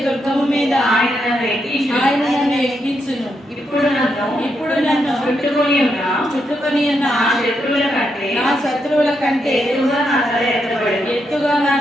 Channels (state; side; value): normal; both; correlation 0.81